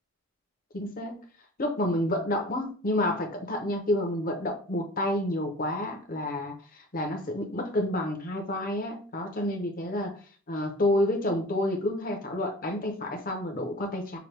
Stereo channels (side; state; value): both; normal; correlation 0.42